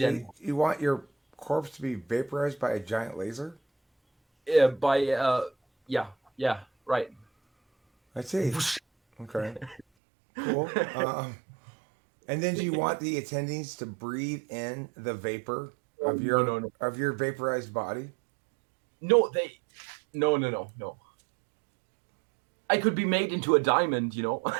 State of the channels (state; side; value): drops out; left; at 9.9 s